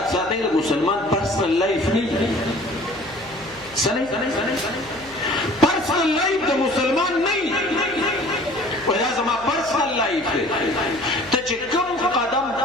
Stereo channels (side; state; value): left; noise; hum, 23 dB below the sound